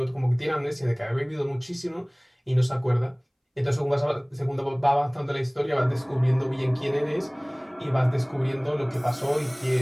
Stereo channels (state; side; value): identical; both; correlation 1.00